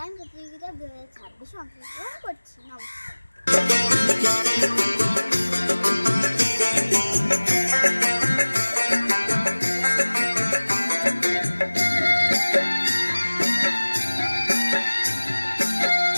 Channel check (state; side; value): inverted; both; correlation -1.00